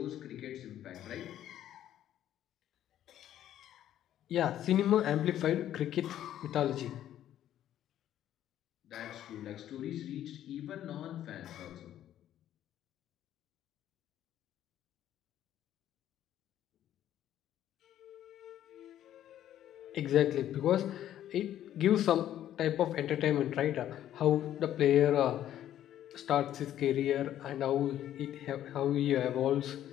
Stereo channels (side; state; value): right; quieter; 11.7 dB